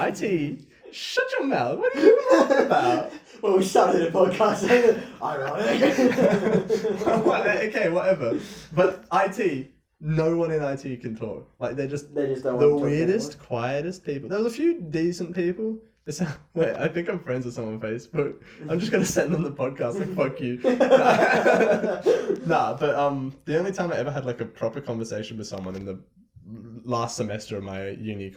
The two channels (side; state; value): both; identical; correlation 1.00